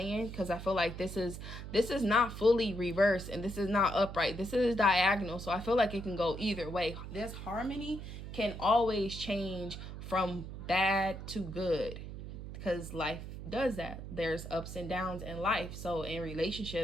because I feel like this is not fully reversed and this is not upright. This is diagonal. So I feel like it can go either way. This harmony can always change from bad to good, because life does that. There's ups and downs in life. So in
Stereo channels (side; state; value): right; noise; hum, 9 dB below the sound